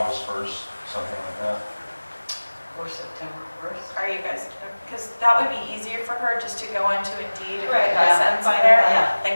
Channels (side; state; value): both; inverted; correlation -1.00